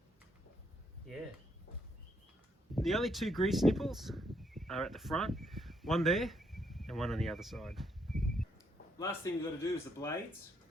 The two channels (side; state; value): both; normal; correlation 0.74